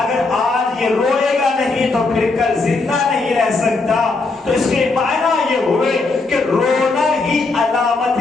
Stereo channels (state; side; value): quieter; right; 3.7 dB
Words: اگر آج یہ روئے گا نہیں تو پھر کل زندہ نہیں رہ سکتا. تو اس کے معنی یہ ہوئے کہ رونا ہی علامت